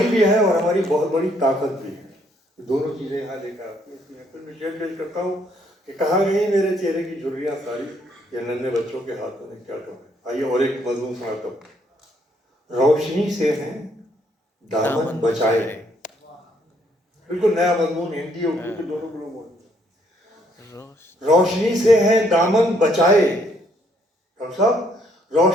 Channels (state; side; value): normal; both; correlation 0.69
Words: भी है और हमारी बहुत बड़ी ताकत भी है। दोनों चीजें यहाँ लेकर आती हैं। फिर मैं शेयर पेश करता हूँ कि कहाँ गई मेरे चेहरे की झुर्रियाँ सारी, ये नन्हे बच्चों के हाथों में क्या करूँ। आइए और एक मजमून सुनाता हूँ। रोशनी से है दामन बचाए, बिल्कुल नया मजमून, हिंदी उर्दू के दोनों को लोग। रोशनी से है दामन बचाए, डॉक्टर साहब,